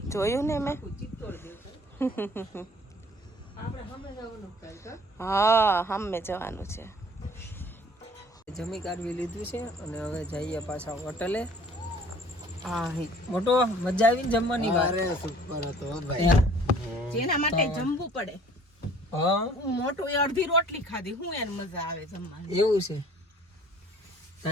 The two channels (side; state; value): both; normal; correlation 0.53